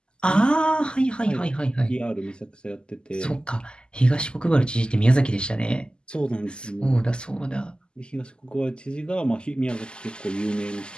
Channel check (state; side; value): late; right; 0.048 ms